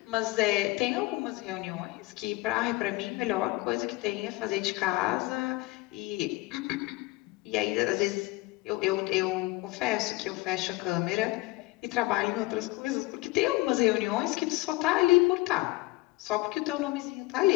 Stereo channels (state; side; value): quieter; right; 21.0 dB